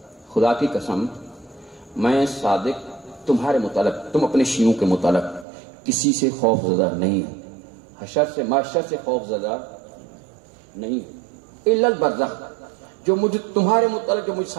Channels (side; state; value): left; drops out; at 5.5 s